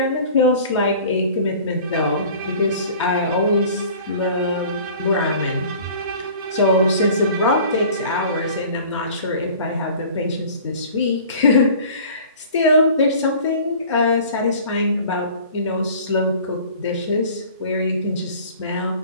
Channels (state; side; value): inverted; both; correlation -0.46